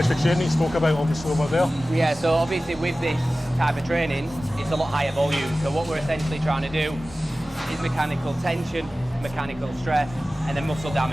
training you spoke about obviously over there? Yeah, so obviously with this type of training, it's a lot higher volume. So what we're essentially trying to do is mechanical tension, mechanical stress, and then muscle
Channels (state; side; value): normal; both; correlation 0.96